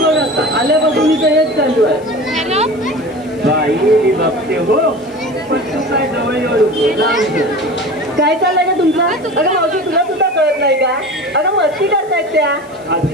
बघ आता आल्यापासून इथं हेच चालू आहे. बाई मी बघते हो पण तू काय जवळ येऊ काय चाललंय का तुमचं? अगं मावशी तुला सुद्धा कळत नाही का? अगं मस्ती करतायत त्या.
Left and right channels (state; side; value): noise; left; hiss, 28 dB below the sound